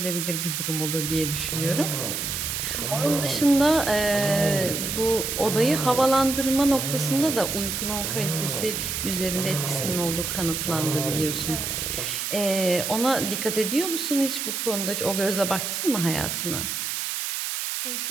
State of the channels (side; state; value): right; noise; hiss, 2 dB below the sound